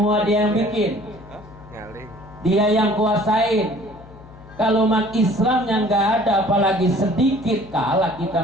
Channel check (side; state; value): left; noise; hum, 20 dB below the sound